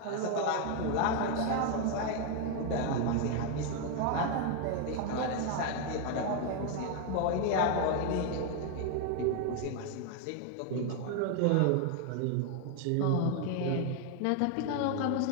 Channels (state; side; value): different; both; correlation 0.01